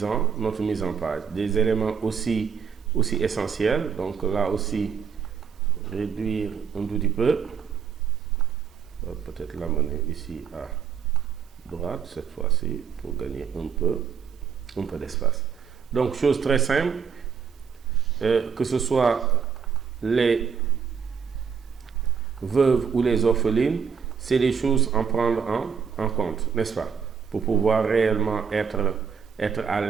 en page. Des éléments aussi essentiels. Donc, là aussi, réduire un tout petit peu. Peut-être l'amener ici à droite cette fois-ci pour gagner un peu d'espace. Donc, chose très simple, que ce soit les veuves ou les orphelines, c'est des choses à prendre en compte, n'est-ce pas? Pour pouvoir réellement être à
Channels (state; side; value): quieter; left; 6.6 dB